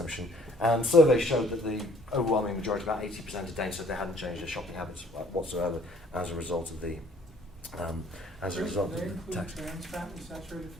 And surveys showed that the overwhelming majority, about 80% of Danes, said they hadn't changed their shopping habits whatsoever as a result of the tax. Trans fat and saturated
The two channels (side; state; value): both; normal; correlation 0.57